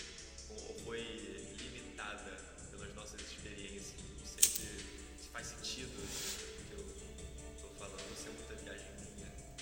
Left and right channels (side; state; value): both; identical; correlation 1.00